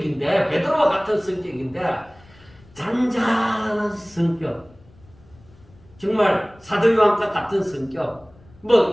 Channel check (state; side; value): noise; left; rumble, 26 dB below the sound